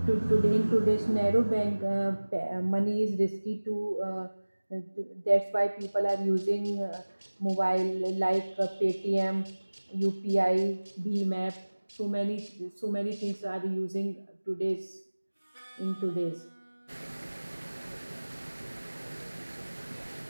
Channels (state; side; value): inverted; both; correlation -1.00